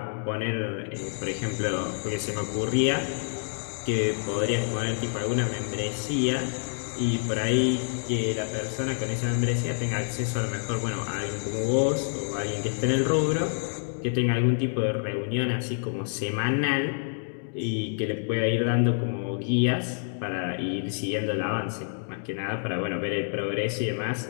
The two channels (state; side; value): silent; right; digital silence